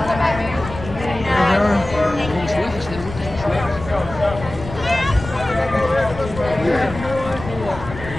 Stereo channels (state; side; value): noise; left; rumble, 11 dB below the sound